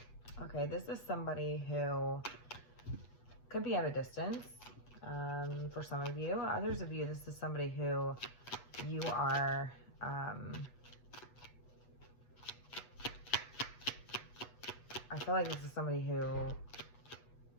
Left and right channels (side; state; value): right; late; 8.1 ms